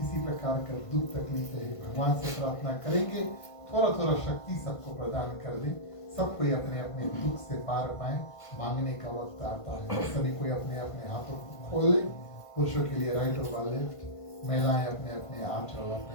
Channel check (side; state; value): right; late; 1.5 ms